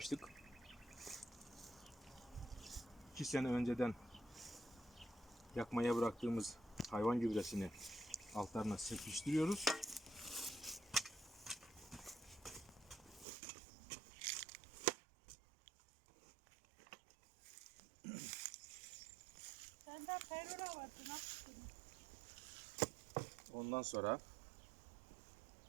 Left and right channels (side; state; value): left; drops out; at 13.2 s